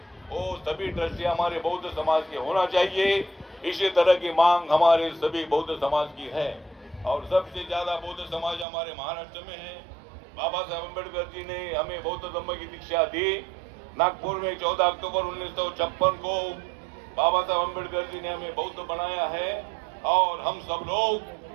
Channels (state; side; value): drops out; left; at 8.7 s